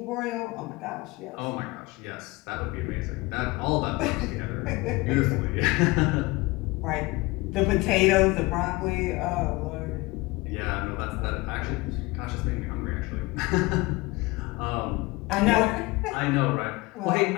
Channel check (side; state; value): right; quieter; 22.8 dB